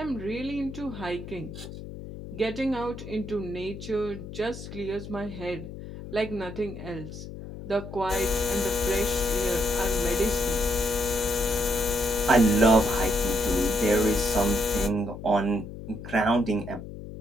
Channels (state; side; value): noise; left; hum, 11 dB below the sound